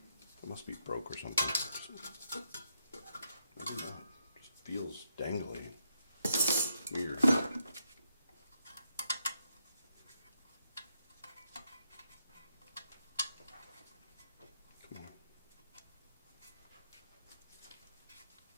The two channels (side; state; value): both; inverted; correlation -0.79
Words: It must be broke or something. I don't know. It just feels dangly. Weird. Come on.